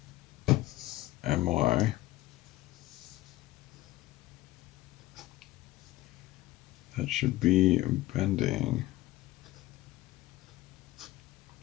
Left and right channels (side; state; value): right; quieter; 16.9 dB